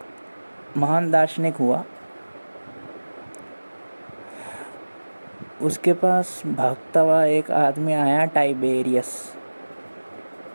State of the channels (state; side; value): inverted; both; correlation -1.00